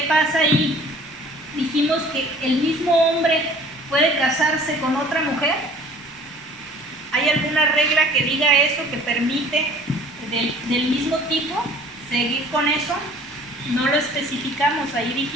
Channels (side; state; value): both; normal; correlation 0.50